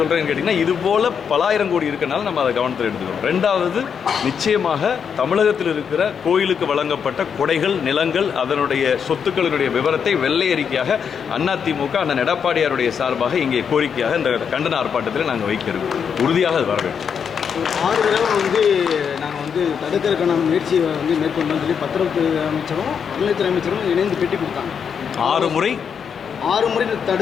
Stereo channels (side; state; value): right; quieter; 7.0 dB